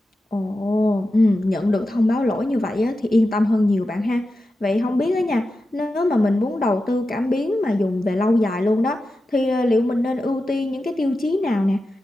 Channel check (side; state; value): both; normal; correlation 0.91